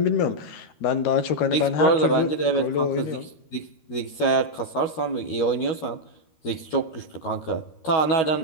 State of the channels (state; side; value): late; right; 13 ms